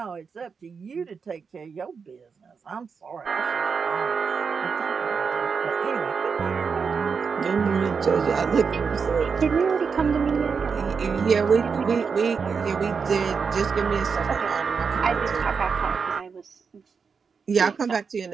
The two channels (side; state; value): left; quieter; 5.7 dB